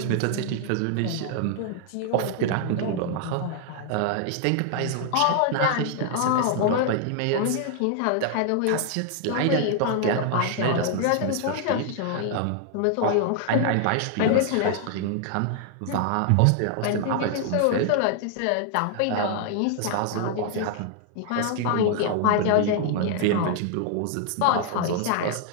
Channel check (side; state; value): both; different; correlation 0.00